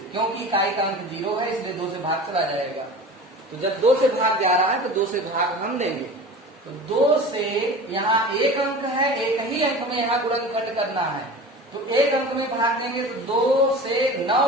क्योंकि इकाई का अंक 0 है इसलिए 2 से भाग चला जाएगा। तो जब 2 से भाग जा रहा है तो 2 से भाग हम देंगे। तो 2 से यहाँ एक अंक है, एक ही अंक में यहाँ गुणनखंड करना है, तो एक अंक में भाग देंगे। तो 2 से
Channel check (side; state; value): both; normal; correlation 0.36